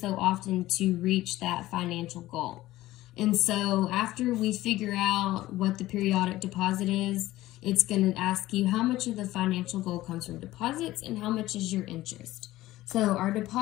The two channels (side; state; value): right; quieter; 16.4 dB